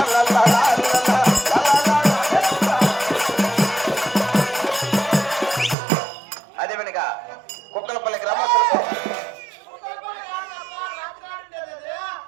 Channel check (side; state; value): left; drops out; at 5.8 s